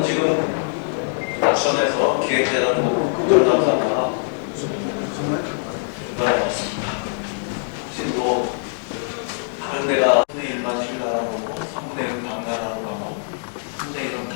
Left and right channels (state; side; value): silent; right; digital silence